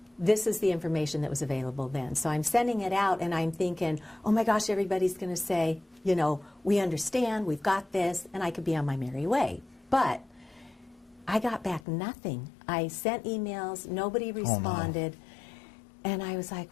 this is the information that was available then. So I'm sending it out, and I'm thinking, oh my gosh, everybody's going to say, you know, we understand, we've got this, and I could be on my merry way. But I got back nothing. I sent emails, nobody responded, and I was like,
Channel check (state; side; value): drops out; right; at 11.8 s